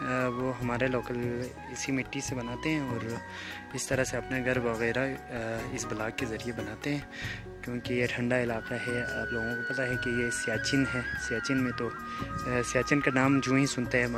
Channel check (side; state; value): both; identical; correlation 1.00